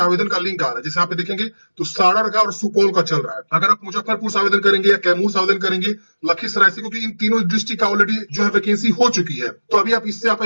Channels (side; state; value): both; inverted; correlation -1.00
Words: आवेदन का लिंक आ रहा है। जैसे यहाँ पे देखेंगे तो सारण का और सुपौल का चल रहा है। अगर आप मुजफ्फरपुर से आवेदन करेंगे या कैमूर से आवेदन करेंगे, लखीसराय से, क्योंकि इन तीनों डिस्ट्रिक्ट का ऑलरेडी जो है वैकेंसी हो चुकी है, तो अभी आप इससे